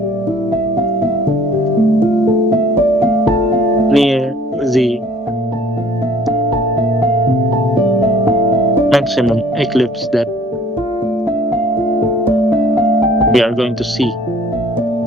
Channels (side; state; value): both; normal; correlation 0.54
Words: near the maximum eclipse that we are going to see.